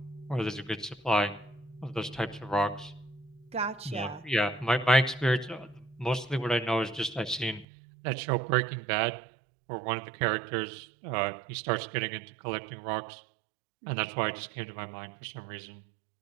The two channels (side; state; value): left; drops out; at 7.7 s